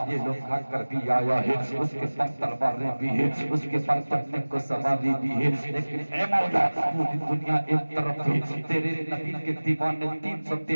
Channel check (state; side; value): inverted; both; correlation -1.00